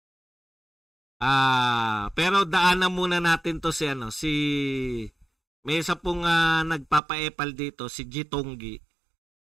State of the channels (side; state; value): left; drops out; at 7.0 s